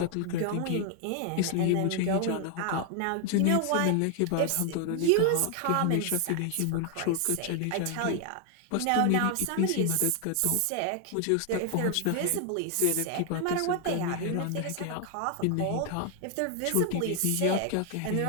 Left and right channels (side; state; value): both; different; correlation 0.00